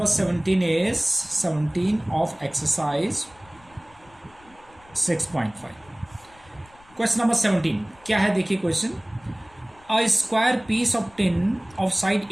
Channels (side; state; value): left; noise; rumble, 28 dB below the sound